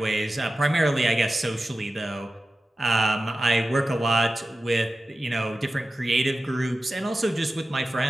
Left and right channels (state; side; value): normal; both; correlation 0.94